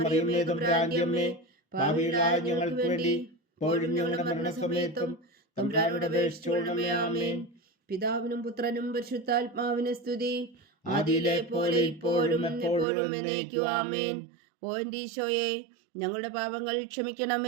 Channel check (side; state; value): left; drops out; at 12.9 s